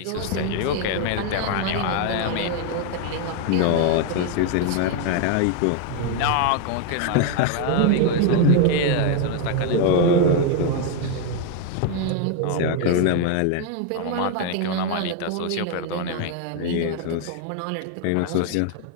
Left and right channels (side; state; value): both; different; correlation 0.01